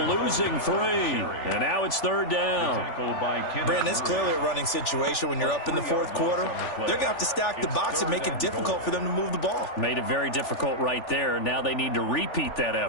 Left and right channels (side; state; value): right; late; 3.4 ms